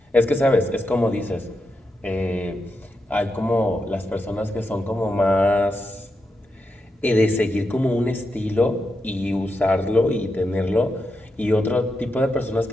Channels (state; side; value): normal; both; correlation 0.86